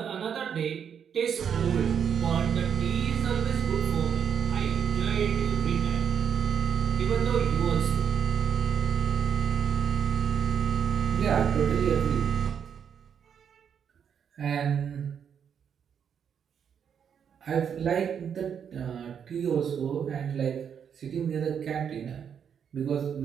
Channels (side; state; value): left; quieter; 7.8 dB